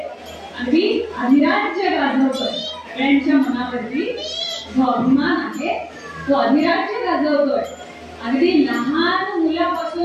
अगदी अधिराज्य गाजवतोय. सगळ्यांच्या मनावरती जो अभिमान आहे तो अधिराज्य गाजवतोय. अगदी लहान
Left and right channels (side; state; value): both; identical; correlation 1.00